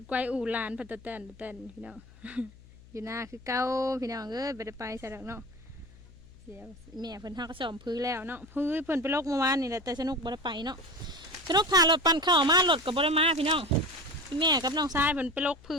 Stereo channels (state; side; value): noise; left; hum, 22 dB below the sound